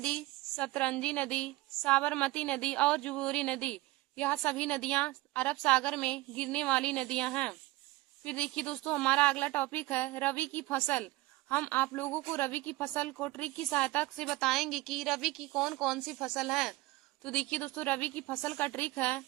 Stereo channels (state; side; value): quieter; left; 19.4 dB